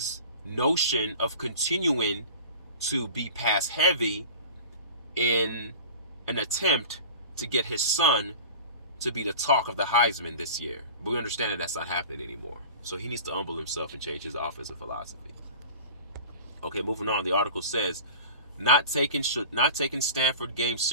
notion of continuing to be pass heavy in an attempt to get his son to be the talk of the Heisman this year. But we understand that that's not happening anymore. So he needs to humble himself and change his offensive philosophy. Okay, moving on. The article says, not taking Stanford game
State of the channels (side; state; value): both; inverted; correlation -0.38